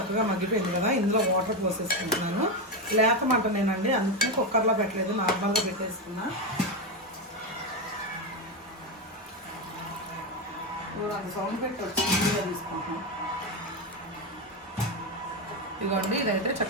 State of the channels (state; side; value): normal; both; correlation 0.10